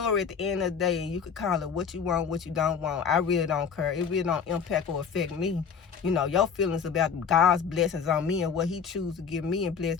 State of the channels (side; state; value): right; quieter; 6.5 dB